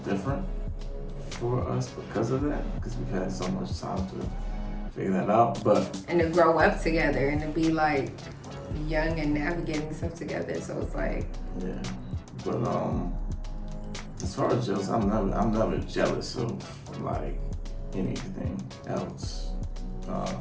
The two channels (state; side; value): identical; both; correlation 1.00